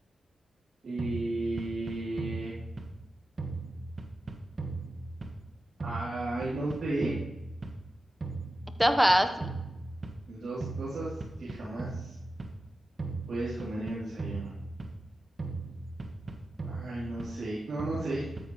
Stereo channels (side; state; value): both; normal; correlation 0.92